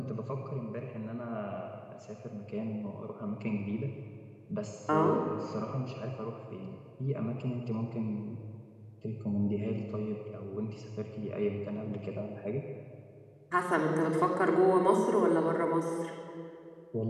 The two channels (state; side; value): identical; both; correlation 1.00